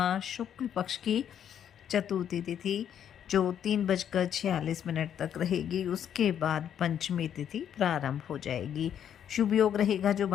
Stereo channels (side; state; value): right; quieter; 9.3 dB